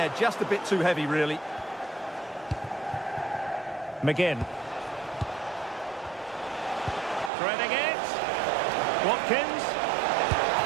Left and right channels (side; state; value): left; drops out; at 7.3 s